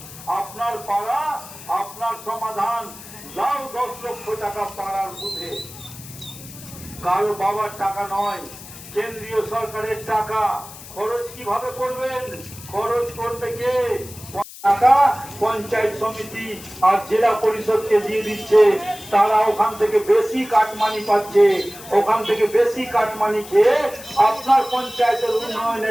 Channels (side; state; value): left; noise; hiss, 16 dB below the sound